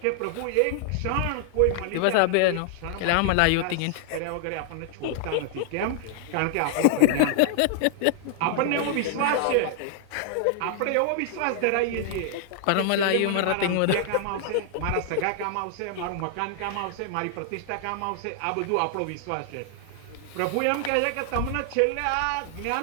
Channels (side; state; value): both; different; correlation 0.00